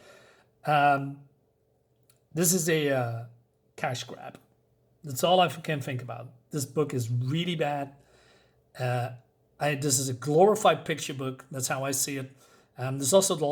This is a cash grab. That's all I can think about. This book is really bad. This is a glorified picture book. That's how I see it. This is also the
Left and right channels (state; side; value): identical; both; correlation 1.00